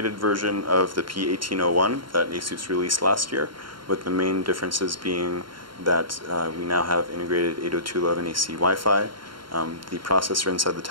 version of the P1801 that ASUS released last year, with the main differences being that we now have integrated 802.11ac Wi-Fi. The processor inside the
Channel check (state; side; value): late; left; 0.73 ms